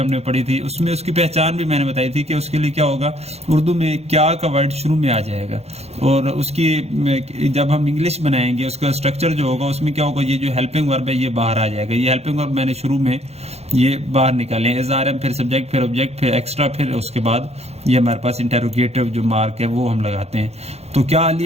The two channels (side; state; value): left; late; 0.31 ms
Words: نے پڑھی تھی، اس میں اس کی پہچان بھی میں نے بتائی تھی کہ اس کے لیے کیا ہوگا؟ اردو میں کیا کا ورڈ شروع میں آ جائے گا، اور اس کی جب ہم انگلش بنائیں گے اس کا اسٹرکچر جو ہوگا اس میں کیا ہوگا؟ یہ جو ہیلپنگ ورب ہے یہ باہر آ جائے گا. یہ ہیلپنگ ورب میں نے شروع میں یہ باہر نکالے ہیں، اظہار ہے، پھر سبجیکٹ، پھر آبجیکٹ، پھر ایکسٹرا، پھر اس کے بعد یہ ہمارے پاس انٹیروگیٹو جو مارک ہے وہ ہم لگاتے ہیں. تو کیا